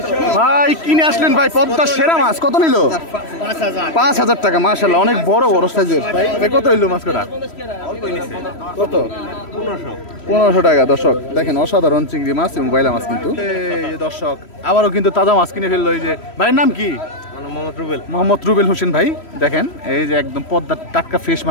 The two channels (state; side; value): late; right; 3.1 ms